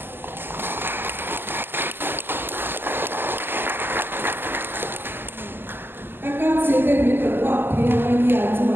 các con sẽ đến với tổ hợp thì anh nhà cho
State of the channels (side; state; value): left; late; 0.10 ms